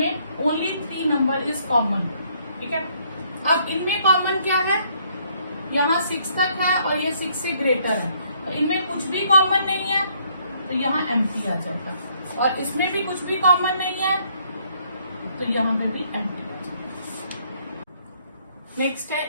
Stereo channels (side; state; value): both; inverted; correlation -0.67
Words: ओनली 3 नंबर इज कॉमन, ठीक है। अब इनमें कॉमन क्या है, यहाँ 6 तक है और ये 6 से ग्रेटर है, और इनमें कुछ भी कॉमन नहीं है तो यहाँ एम्प्टी आ जाएगा, और इसमें भी कुछ भी कॉमन नहीं है तो यहाँ पे भी एम्प्टी आ जाएगा। नेक्स्ट है